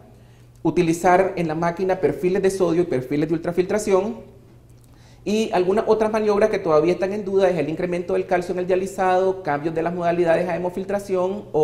Utilizar en la máquina perfiles de sodio y perfiles de ultrafiltración. Y algunas otras maniobras que todavía están en duda es el incremento del calcio en el dializado, cambios de las modalidades a hemofiltración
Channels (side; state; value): both; identical; correlation 1.00